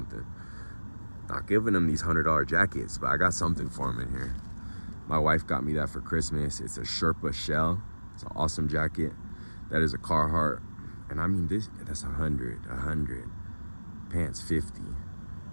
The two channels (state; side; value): inverted; both; correlation -1.00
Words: Not giving them these $100 jackets, but I got something for them in here. My wife got me that for Christmas. It's a Sherpa shell. It's an awesome jacket. That is a Carhartt. And I mean, that's 100. Pants 50.